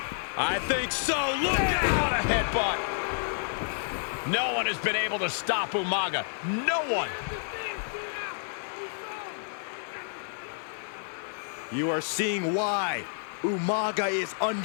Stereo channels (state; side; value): silent; right; 58 dB below the other